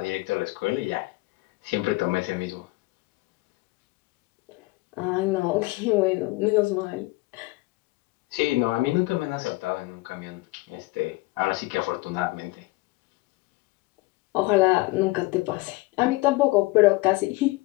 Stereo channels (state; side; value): quieter; right; 21.6 dB